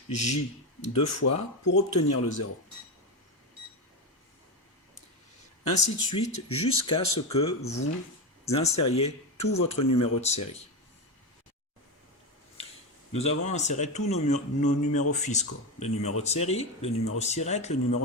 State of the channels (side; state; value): both; normal; correlation 0.15